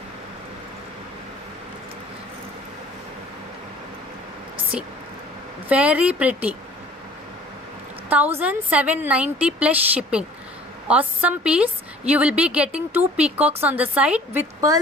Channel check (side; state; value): both; normal; correlation 0.50